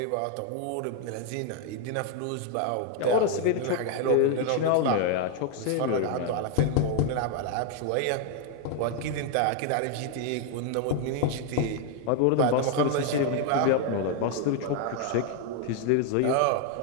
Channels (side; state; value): both; different; correlation 0.01